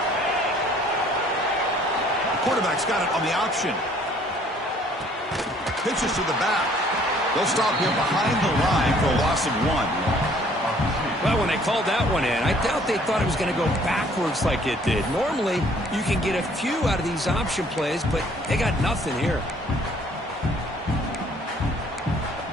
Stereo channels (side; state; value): both; normal; correlation 0.59